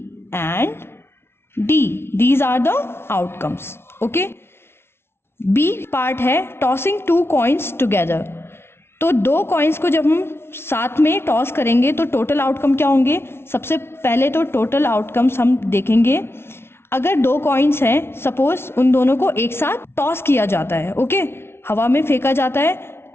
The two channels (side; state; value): right; late; 0.12 ms